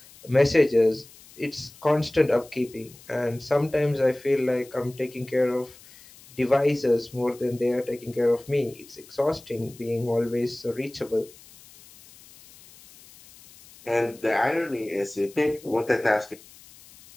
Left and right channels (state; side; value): noise; left; hiss, 23 dB below the sound